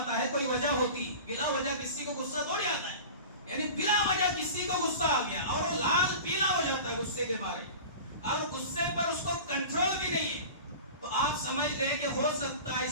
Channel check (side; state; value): both; inverted; correlation -0.35